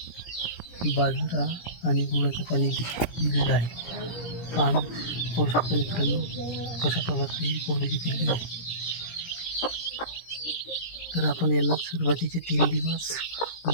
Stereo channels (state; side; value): late; right; 17 ms